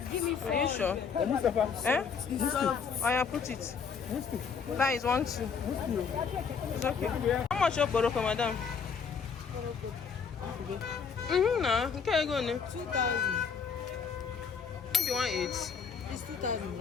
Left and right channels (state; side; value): quieter; right; 6.2 dB